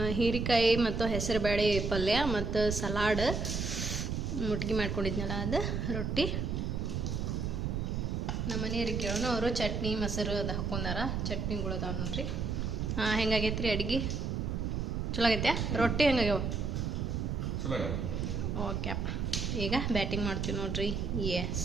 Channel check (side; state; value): right; noise; rumble, 1 dB below the sound